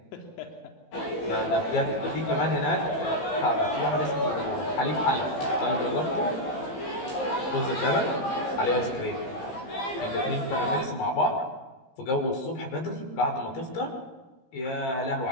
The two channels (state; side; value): late; right; 15 ms